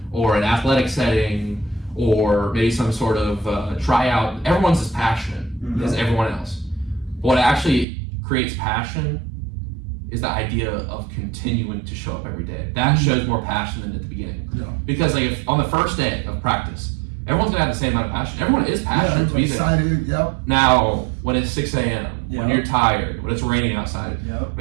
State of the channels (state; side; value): drops out; left; at 7.9 s